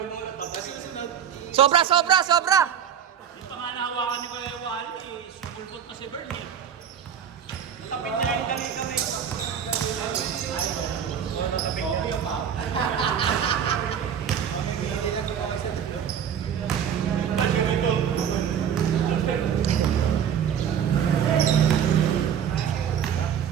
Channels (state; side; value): quieter; left; 8.4 dB